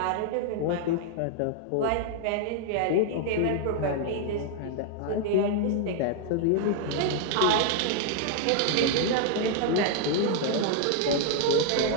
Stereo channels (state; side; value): different; both; correlation 0.00